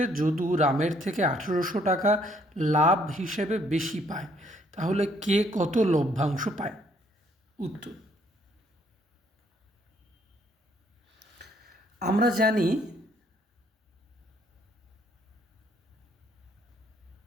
যদু রামের থেকে 1800 টাকা লাভ হিসেবে বেশি পায়, তাহলে কে কত লভ্যাংশ পায়? উত্তর: আমরা জানি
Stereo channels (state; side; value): normal; both; correlation 0.66